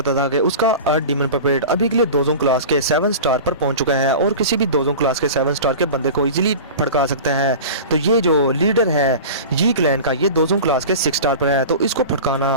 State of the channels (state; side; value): inverted; both; correlation -0.34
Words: था कि उसका अर्थ डीमन पपेट अभी के लिए 2 क्लास के 7 स्टार पर पहुंच चुका है, और किसी भी 2 क्लास के 7 स्टार के बंदे को इजीली भड़का सकता है। तो ये जो लीडर है यी क्लैन का, ये 2 क्लास के 6 स्टार पर है, तो इसको